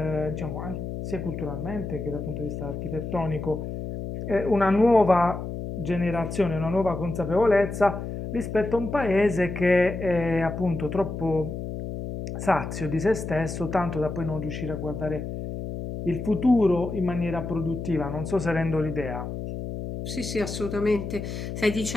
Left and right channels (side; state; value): left; noise; hum, 6 dB below the sound